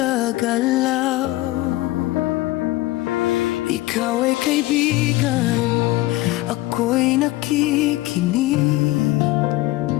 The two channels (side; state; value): right; quieter; 18.3 dB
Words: Ikaw ay kaibigan, ako'y nakikinig